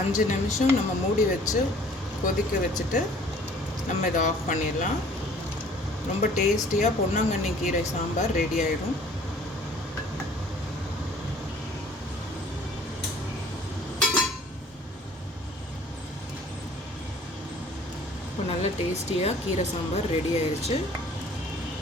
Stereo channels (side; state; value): both; normal; correlation 0.53